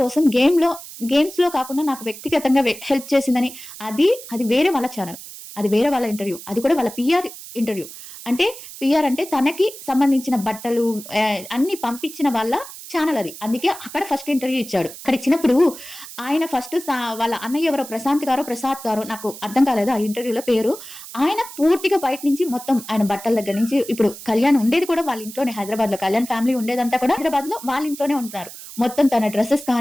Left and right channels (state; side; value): noise; right; hiss, 14 dB below the sound